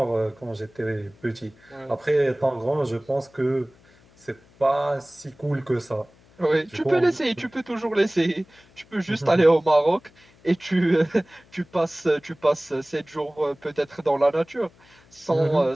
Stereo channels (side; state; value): left; noise; hum, 29 dB below the sound